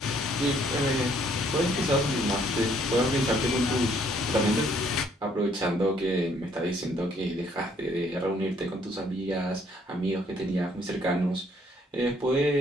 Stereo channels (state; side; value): normal; both; correlation 0.65